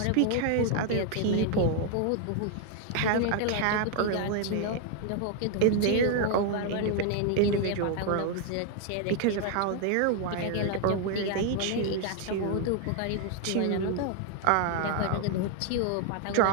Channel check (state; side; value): different; both; correlation 0.00